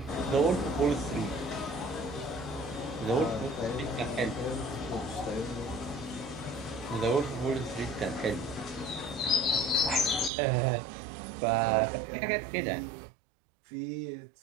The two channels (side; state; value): left; drops out; at 10.3 s